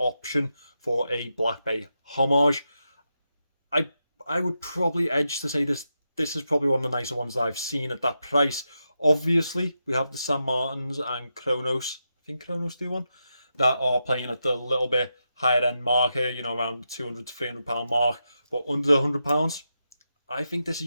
for a Blackbay Homage. I would probably edge to say this is probably one of the nicer ones that I've seen at that price. Obviously, we have the San Martins and Chronos. I think Chronos do one that are playing at the little bit higher end market, you know, around the £200 to £300 mark. But under the £100, I think this is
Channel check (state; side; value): inverted; both; correlation -0.87